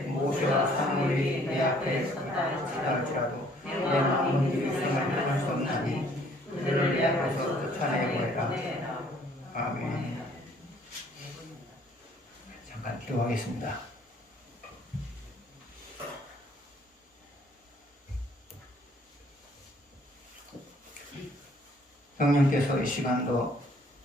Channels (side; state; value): both; normal; correlation 0.60